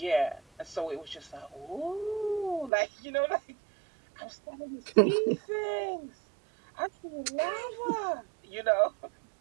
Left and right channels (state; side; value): drops out; left; at 2.7 s